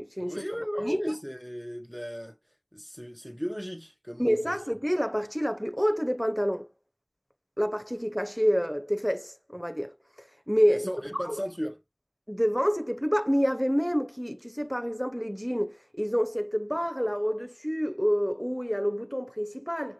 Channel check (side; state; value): both; identical; correlation 1.00